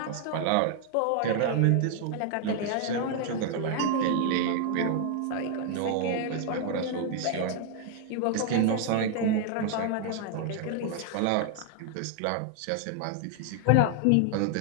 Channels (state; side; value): different; both; correlation 0.00